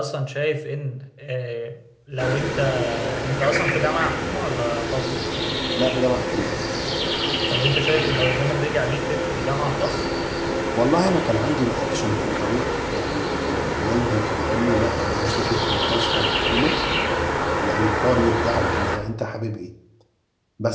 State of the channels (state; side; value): identical; both; correlation 1.00